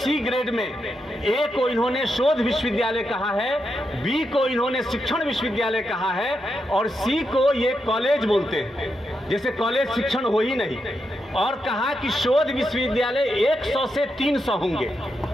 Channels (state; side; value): normal; both; correlation 0.84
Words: ग्रेड में, ए को इन्होंने शोध विश्वविद्यालय कहा है, बी को इन्होंने शिक्षण विश्वविद्यालय कहा है और सी को ये कॉलेज बोलते हैं, जैसे कॉलेज शिक्षण हो ही नहीं। और कहा कि शोध विश्वविद्यालय 100 से 300 होंगे,